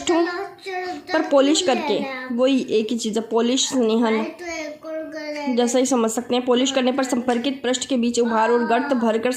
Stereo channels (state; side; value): identical; both; correlation 1.00